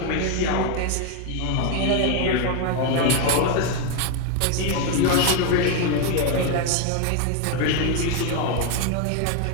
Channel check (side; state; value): both; different; correlation 0.01